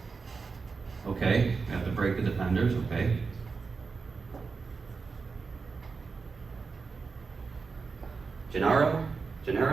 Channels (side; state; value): left; quieter; 4.8 dB